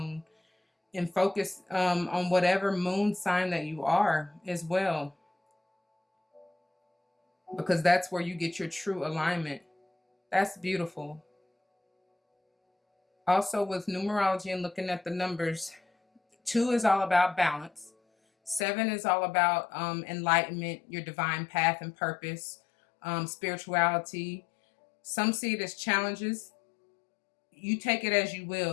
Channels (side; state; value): right; drops out; at 18.7 s